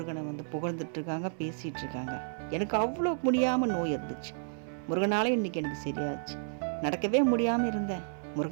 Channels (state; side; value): silent; left; 57 dB below the other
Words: புகழ்ந்துட்டுருக்காங்க, பேசிகிட்டு இருக்காங்க. எனக்கு அவ்வளோ முடியாமல் நோய் இருந்துச்சு, முருகனால் இன்றைக்கி எனக்கு சரியாச்சு. நடக்கவே முடியாமல் இருந்தேன்,